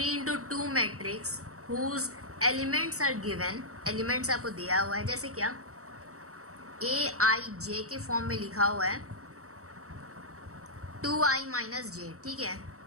into 2 matrix whose elements are given. Elements आपको दिया हुआ है, जैसे क्या AIJ के फॉर्म में लिखा हुआ है 2i माइनस जे, ठीक है,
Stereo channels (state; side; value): late; left; 0.64 ms